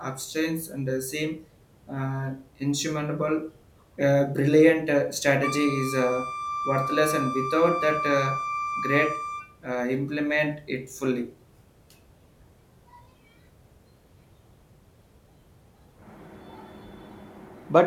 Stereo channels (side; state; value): both; identical; correlation 1.00